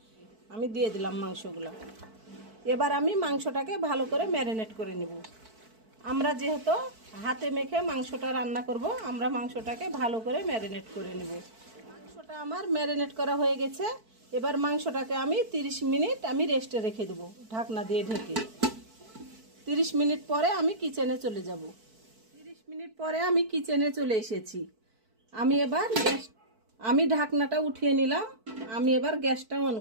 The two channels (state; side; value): late; left; 4.5 ms